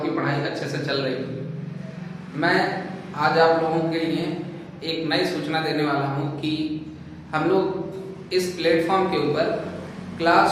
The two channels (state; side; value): identical; both; correlation 1.00